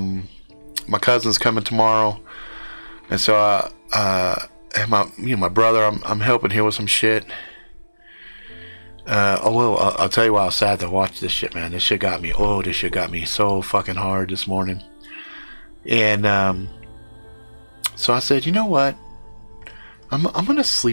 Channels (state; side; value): inverted; both; correlation -1.00